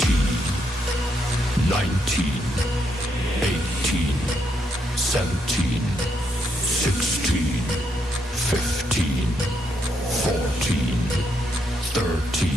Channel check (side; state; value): both; normal; correlation 0.77